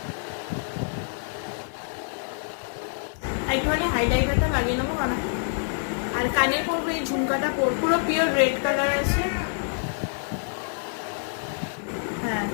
একটুখানি হাইলাইটারটা লাগিয়ে নেবো কারণ, আর কানে পরবো এই ঝুমকাটা পরবো, পুরো পিওর রেড কালার আছে। হ্যাঁ,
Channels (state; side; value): silent; right; digital silence